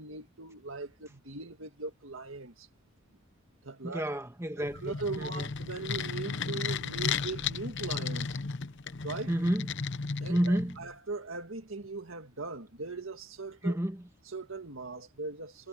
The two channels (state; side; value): normal; both; correlation 0.56